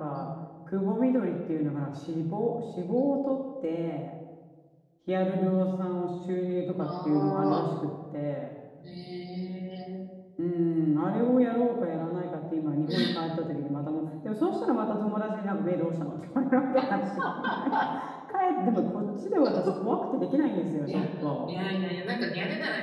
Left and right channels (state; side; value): identical; both; correlation 1.00